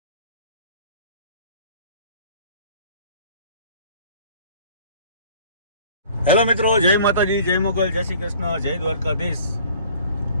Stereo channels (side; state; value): both; inverted; correlation -0.50